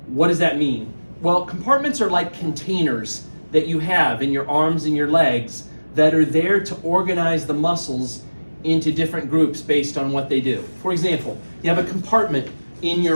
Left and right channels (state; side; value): inverted; both; correlation -1.00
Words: What does that mean? Well, compartments are like containers that you have in your arms and your legs that are there to organize the muscles into different groups based on what they do. For example, you have a compartment in